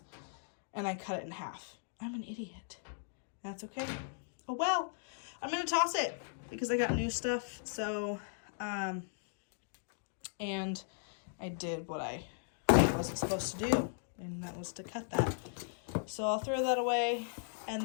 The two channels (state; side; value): silent; right; digital silence